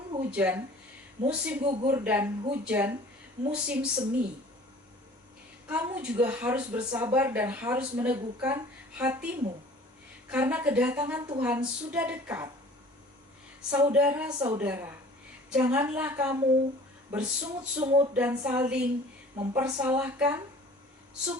hujan, musim gugur dan hujan, musim semi. Kamu juga harus bersabar dan harus meneguhkan hatimu, karena kedatangan Tuhan sudah dekat. Saudara-saudara, janganlah kamu bersungut-sungut dan saling mempersalahkan,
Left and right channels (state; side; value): normal; both; correlation 0.48